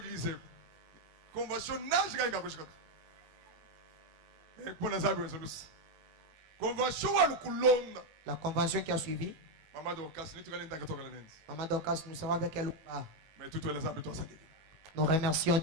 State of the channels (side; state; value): left; late; 19 ms